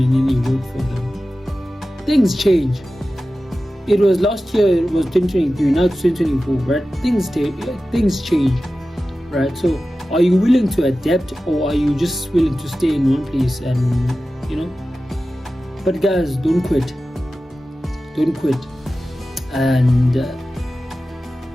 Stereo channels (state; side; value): normal; both; correlation 0.94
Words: then it worked for them? Things change. It was last year, it was 2023, now it's 2024, right? Things change, right? So are you willing to adapt, or are you just willing to stay in one place and But guys, don't quit. And